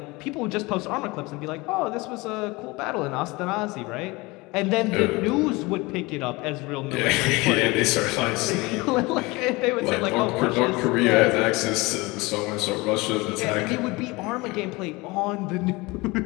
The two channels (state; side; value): quieter; right; 23.5 dB